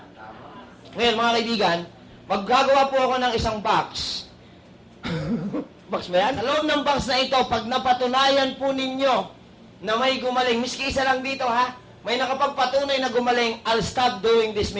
Tama. Ngayon, mga kaibigan, maggagawa po ako ng isang box. Box ba yan? Sa loob ng box na ito, pag napatunayan po ninyo na may gumaling, miski isa lang dito ha, may nakapagpatunay na gumaling, I'll stop doing this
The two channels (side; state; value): both; identical; correlation 1.00